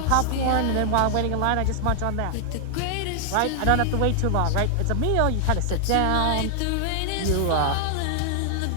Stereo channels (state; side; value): different; both; correlation 0.00